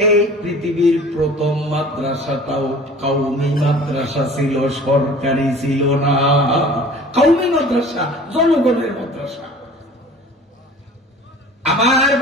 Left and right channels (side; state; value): both; normal; correlation 0.45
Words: এই পৃথিবীর প্রথম মাদ্রাসাটাও কওমি মাদ্রাসা ছিল, সরকারি ছিল না। কওমি মাদ্রাসা, জনগণের মাদ্রাসা। আমার